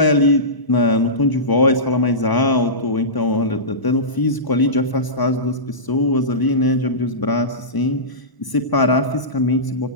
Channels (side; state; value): right; late; 1.0 ms